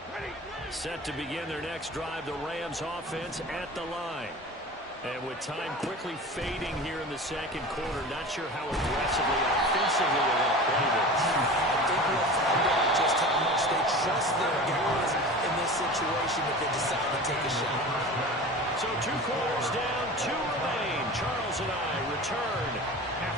Set to begin their next drive, the Rams offense at the line. And with time quickly fading here in the second quarter, not sure how aggressively, offensively they're going to play this. I think we'll find out just how much they trust their guys in this situation if they decide to take a shot. So 2 quarters down, 2 remain. Charles and I return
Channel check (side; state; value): both; normal; correlation 0.35